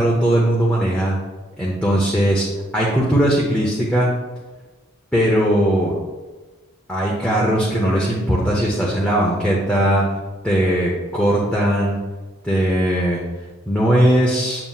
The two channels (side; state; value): both; normal; correlation 0.73